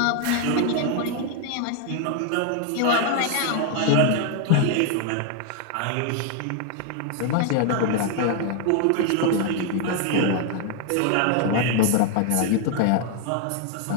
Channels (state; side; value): different; both; correlation 0.00